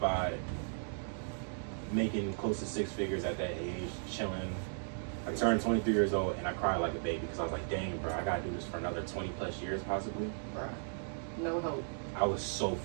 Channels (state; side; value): silent; left; digital silence